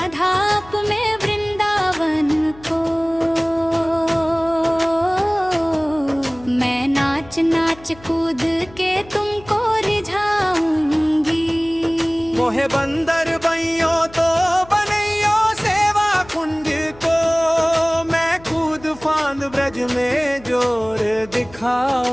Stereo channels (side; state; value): left; noise; hum, 22 dB below the sound